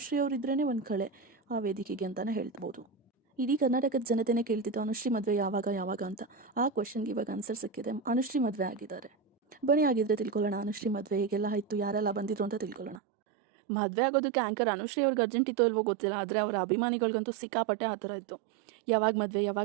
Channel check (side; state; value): left; drops out; at 13.0 s